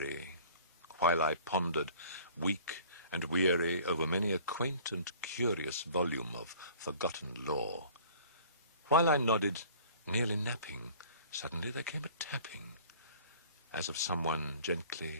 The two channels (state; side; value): inverted; both; correlation -0.49